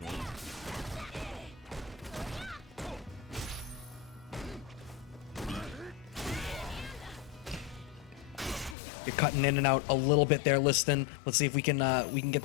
You're cutting in and out a little bit there, Liston. Let's see if we can get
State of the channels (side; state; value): right; drops out; at 8.8 s